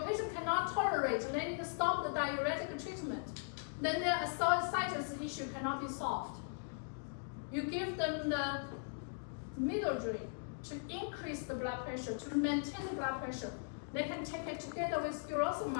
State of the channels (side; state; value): right; silent; digital silence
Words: patient cannot tolerate. They need to stop the diuretic treatment. Then their ascites issue cannot be solved. You give them the middle drain to increase the blood pressure, to maintain the blood pressure. They can take it together with